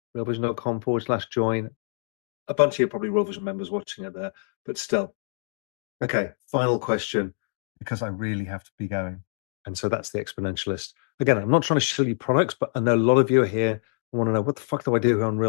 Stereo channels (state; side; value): silent; right; digital silence